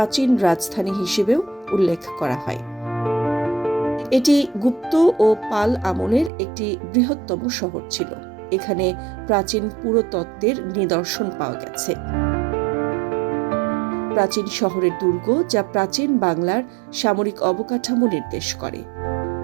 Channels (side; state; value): left; drops out; at 6.3 s